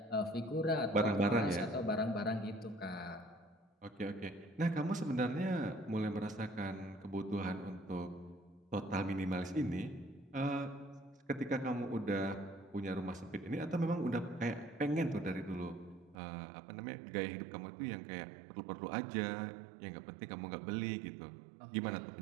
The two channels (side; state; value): left; drops out; at 16.2 s